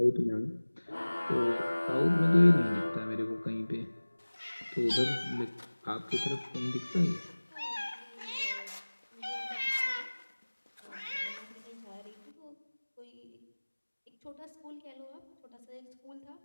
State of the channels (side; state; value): both; inverted; correlation -1.00